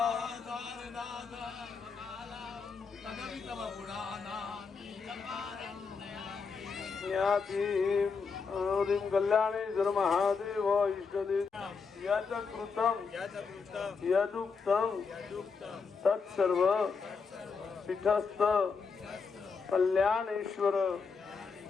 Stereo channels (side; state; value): right; quieter; 5.2 dB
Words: तदपि तव ज्ञातिं हरिं कल्याणेश्वर महादेव इष्टदेव यत् कृतं यदुक्तं तत्सर्व पीठस्थ कल्याणेश्वर